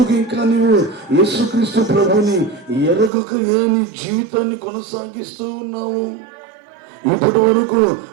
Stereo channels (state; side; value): drops out; left; at 3.1 s